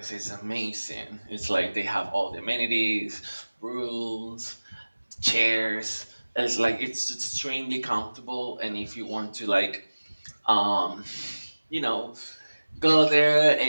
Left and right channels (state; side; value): inverted; both; correlation -1.00